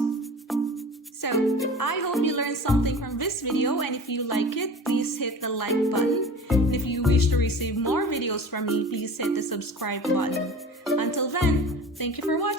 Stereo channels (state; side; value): normal; both; correlation 0.38